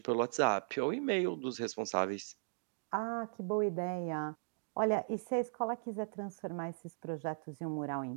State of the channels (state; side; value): silent; left; digital silence